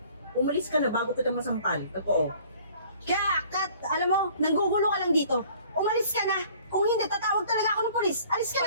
umalis ka na bago kita masampal. Totoo. Kaya, Kat, alam mo, nanggugulo ka lang dito. Umalis ka na. Kung hindi, tatawag talaga ako ng pulis. Alis ka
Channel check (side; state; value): both; inverted; correlation -0.53